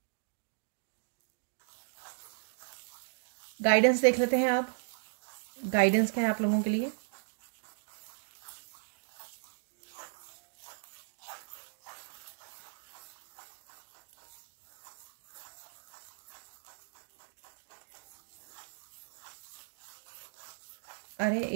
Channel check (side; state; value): left; silent; digital silence